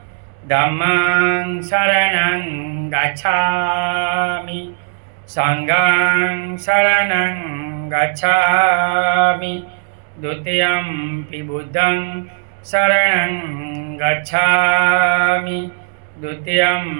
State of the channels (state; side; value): silent; left; digital silence